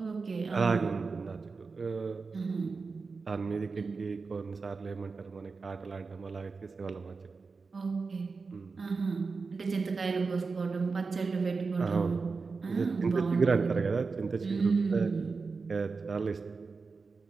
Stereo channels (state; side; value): quieter; left; 4.5 dB